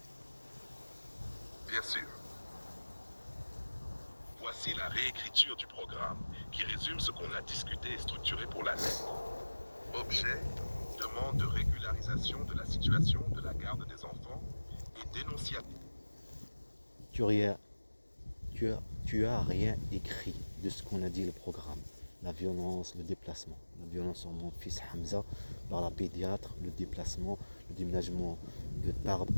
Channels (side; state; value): both; inverted; correlation -1.00